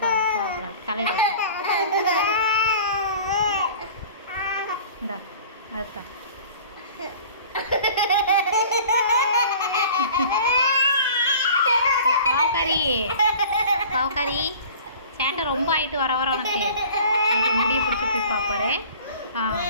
கோவப்படாது தலையில் இந்தா அதுதான். பாவக்காரி பாவக்காரி சேட்டை ரொம்ப ஆயிட்டு வர வர உனக்கு முடிய பிடிச்சி போய் பார்ப்பாரு.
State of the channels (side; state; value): both; inverted; correlation -0.44